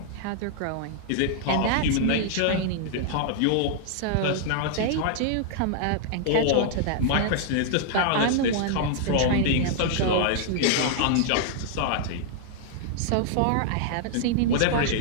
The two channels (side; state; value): both; different; correlation -0.01